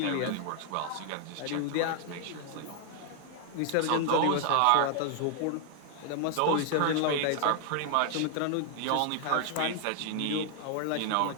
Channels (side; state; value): both; different; correlation 0.00